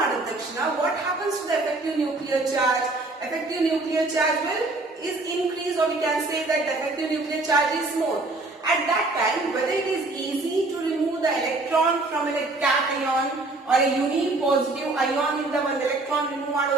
ತಕ್ಷಣ what happens to the effective nuclear charge? Effective nuclear charge is increased, or we can say that the effective nuclear charge is more. At that time, whether it is easy to remove the electron from a cation or a unipositive ion in the one electron remove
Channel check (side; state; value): left; quieter; 3.1 dB